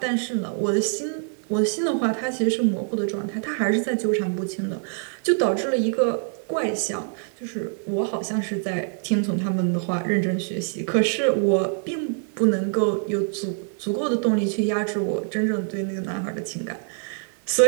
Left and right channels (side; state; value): left; silent; 56 dB below the other